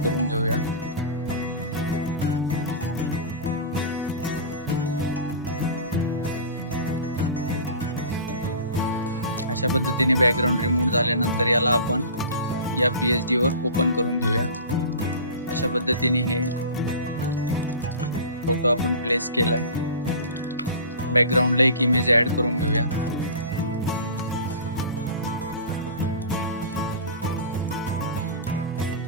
करून घेऊया. अशा पद्धतीने बॅकग्राऊंड रिमूव्ह झाल्यानंतर याला आपण या PhD वर ओपन करून घेऊया. अशा पद्धतीने हे फोटो आपण प्लेस केलाय. बॅकग्राऊंडला एक इमेज ॲड करून घेऊया.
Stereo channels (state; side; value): inverted; both; correlation -0.36